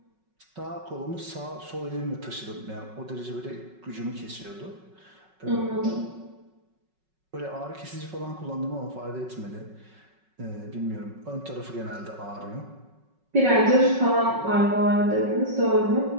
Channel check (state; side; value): late; left; 5.4 ms